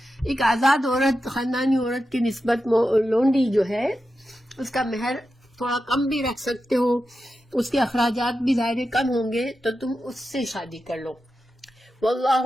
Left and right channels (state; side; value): normal; both; correlation 0.90